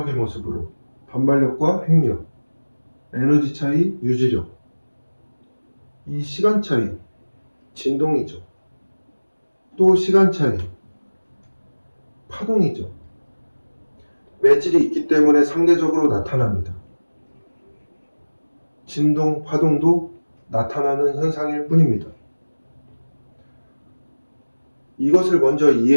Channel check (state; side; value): inverted; both; correlation -1.00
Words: 모습으로 반발력과 핵력, 에너지 차이, 유지력, 이 시간 차이, 진동이죠. 또 시간 차이, 파동이죠. 매질이 있기 때문에 상대적으로 나타납니다. 진동, 파동도 나타나는 현상일 뿐입니다. 이것을 먼저